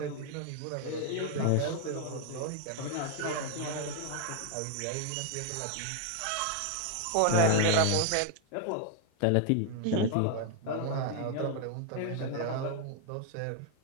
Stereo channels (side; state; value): both; different; correlation 0.00